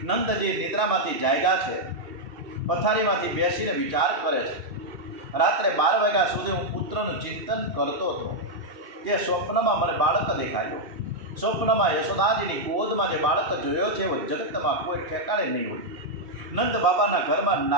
નંદજી નિદ્રામાંથી જાગ્યા છે। પથારીમાંથી બેસીને વિચાર કરે છે। રાત્રે 12 વાગ્યા સુધી હું પુત્રનું ચિંતન કરતો હતો। તે સ્વપ્નમાં મને બાળક દેખાયો। સ્વપ્નમાં યશોદાજીની ગોદમાં જે બાળક જોયો છે એવો જગતમાં કોઈ ઠેકાણે નહીં હોય। નંદ બાબાના ઘરમાં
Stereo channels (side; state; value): left; late; 2.7 ms